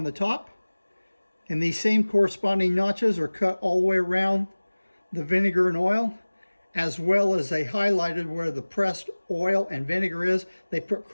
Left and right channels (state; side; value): inverted; both; correlation -1.00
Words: the top, and these same corresponding notches are cut all the way around the vinegar and oil, as well as they highlighted where the pressed oil and vinegar is. They put